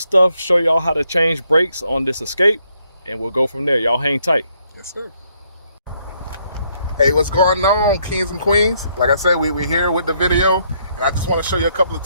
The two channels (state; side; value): inverted; both; correlation -0.72